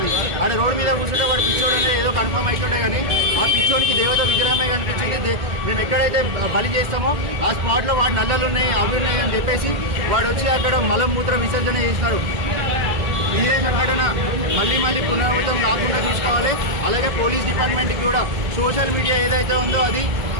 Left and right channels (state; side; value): late; left; 2.1 ms